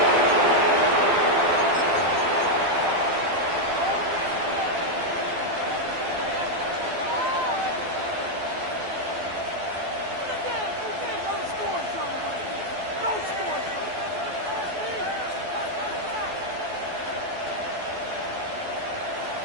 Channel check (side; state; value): left; late; 12 ms